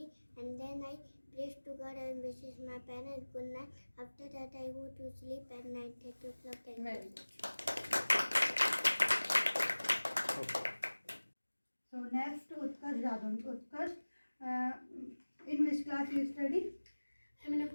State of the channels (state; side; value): inverted; both; correlation -1.00